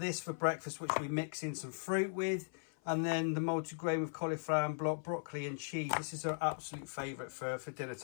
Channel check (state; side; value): silent; right; 52 dB below the other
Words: for breakfast, which we mix in some fruit with. And then the multigrain with cauliflower and broccoli and cheese. This is her absolute favourite for dinner